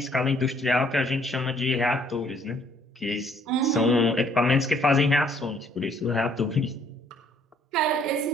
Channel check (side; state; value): both; normal; correlation 0.63